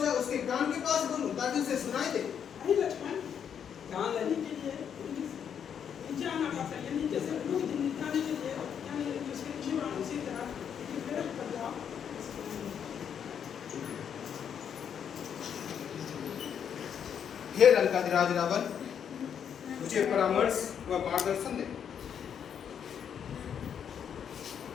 उसके कान के पास बोलूं ताकि उसे सुनाई दे। कान लेने के लिए नीचे आना पड़ता है, नीचे से निकालने के लिए यानी उसके जीवन उसी तरह प्रेरित कर जाओ। हे लंकाधिराज रावण, मुझे परामर्श व मार्गदर्शन दे।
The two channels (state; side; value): quieter; right; 8.1 dB